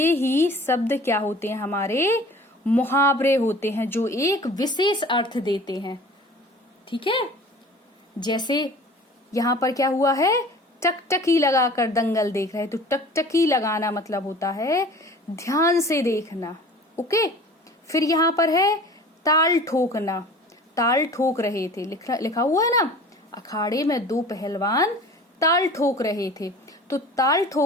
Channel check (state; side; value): normal; both; correlation 0.44